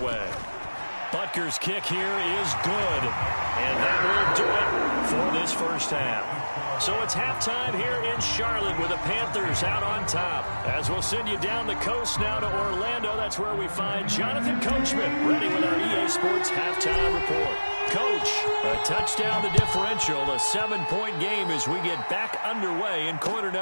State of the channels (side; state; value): both; inverted; correlation -1.00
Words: Butker's kick here is good. And that will do it for this first half. So it's halftime here in Charlotte with the Panthers out on top. As we'll send you down the coast now to Orlando, that's where we find Jonathan Coachman ready with our EA Sports halftime report. Coach, a touchdown to differential, a 7-point game as we get back underway in quarter